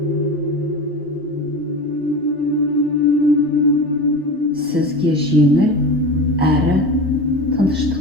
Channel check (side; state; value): both; normal; correlation 0.29